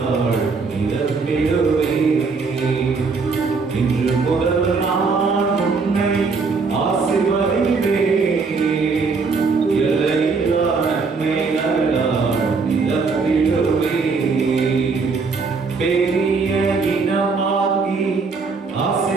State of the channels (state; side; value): quieter; left; 4.6 dB